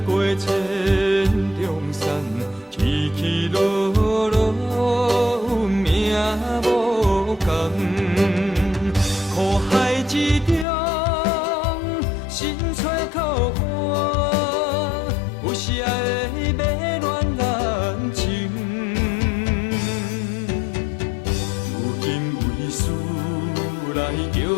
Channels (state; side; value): drops out; right; at 10.7 s